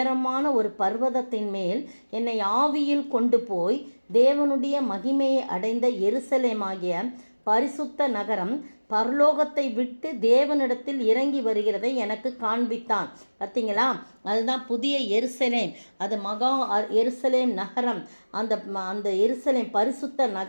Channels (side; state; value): both; inverted; correlation -1.00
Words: ஒரு பர்வதத்தின் மேல் என்னை ஆவியில் கொண்டு போய் தேவனுடைய மகிமையை அடைந்த எருசலேமாகிய பரிசுத்த நகரம் பரலோகத்தை விட்டு தேவனிடத்தில் இறங்கி வருகிறதை எனக்கு காண்பித்தான். பார்த்தீங்களா? அதுதான் புதிய எருசலேம். அது மகா எருசலேம் நகரம். அந்த எருசலேம் பரிசுத்த